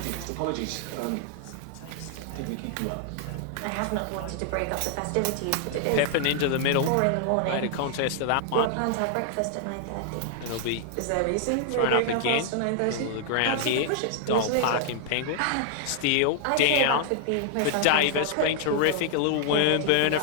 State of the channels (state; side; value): different; both; correlation 0.00